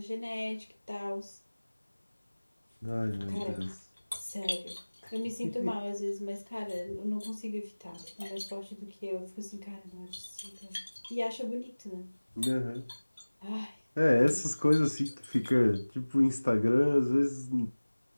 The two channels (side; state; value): both; inverted; correlation -1.00